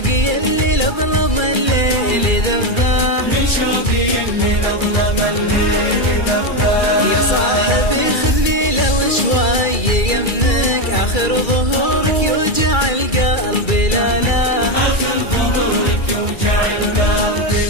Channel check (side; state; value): right; late; 2.3 ms